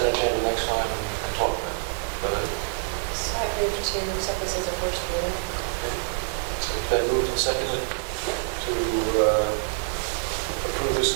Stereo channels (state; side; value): silent; left; digital silence